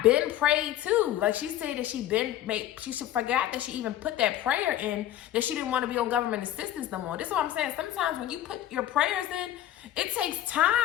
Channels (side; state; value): right; quieter; 12.6 dB